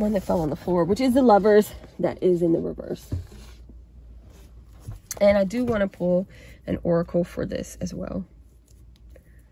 that fell on the floor, which is the Lovers, that is in the reverse. And I do want to pull an oracle for this as well.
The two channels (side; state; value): both; identical; correlation 1.00